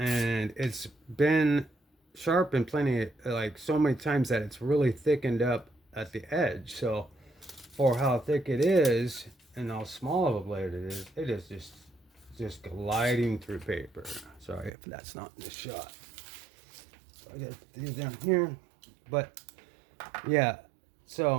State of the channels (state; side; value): drops out; left; at 14.7 s